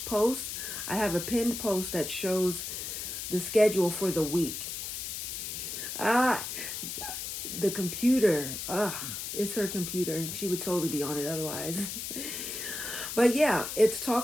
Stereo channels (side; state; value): left; noise; hiss, 5 dB below the sound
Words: post, I have a pinned post that shows the schedule for the week. The computer, it's her computer. She would totally be on it otherwise. But yeah, it's